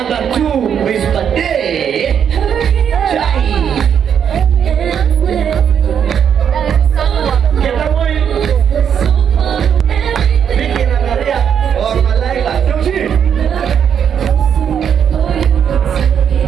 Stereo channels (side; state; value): left; quieter; 8.1 dB